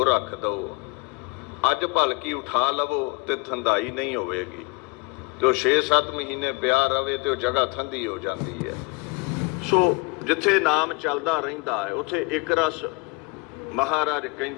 ਰੱਖ ਦਿਓ, ਅੱਜ ਭਲਕੀ ਉਠਾ ਲਵੋ ਤੇ ਠੰਡਾਈ ਨਹੀਂ ਹੋਵੇਗੀ, ਤੇ ਉਹ 6-7 ਮਹੀਨੇ ਪਿਆ ਰਵੇ ਤੇ ਉਹ ਜਗ੍ਹਾ ਠੰਡੀ ਹੋ ਜਾਂਦੀ ਹੈ। ਸੋ ਜਿੱਥੇ ਨਾਮ ਚੱਲਦਾ ਰਹਿੰਦਾ ਹੈ ਉੱਥੇ ਇੱਕ ਰਸ ਮਹਾਰਾਜ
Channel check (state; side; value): quieter; right; 26.8 dB